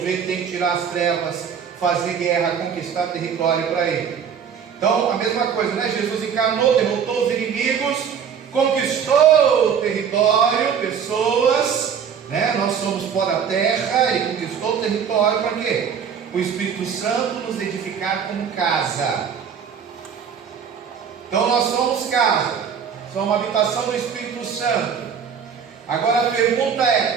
tem que tirar as trevas, fazer guerra, conquistar território para ele. Então a mesma coisa, Jesus encarnou, derrotou os inimigos, conquistou o território, pessoas, nós somos pó da terra, ele conquistou o território para quê? O Espírito Santo nos edificar como casa. Então nós somos casa, somos uma habitação do Espírito Santo. Agora a pergunta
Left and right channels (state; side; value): quieter; left; 7.4 dB